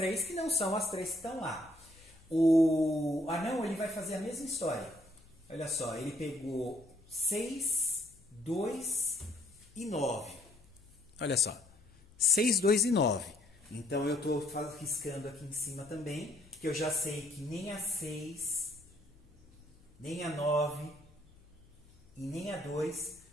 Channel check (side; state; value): left; noise; hum, 27 dB below the sound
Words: que não são as 3 que estão lá. O anão, ele vai fazer a mesma história. Olha só, ele pegou 6, 2 e 9. Olha só, 6, 2 e 9. Então eu estou riscando aqui em cima também, que eu já sei que nem a 6... nem a 9 e nem a 2